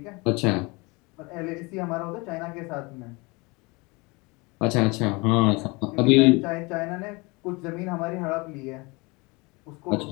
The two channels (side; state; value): right; quieter; 26.3 dB